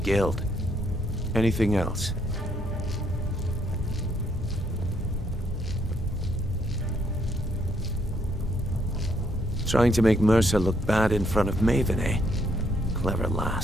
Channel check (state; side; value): normal; both; correlation 0.72